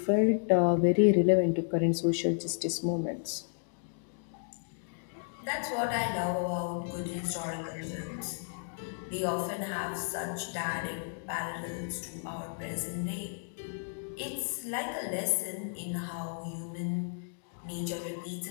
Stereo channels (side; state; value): right; silent; digital silence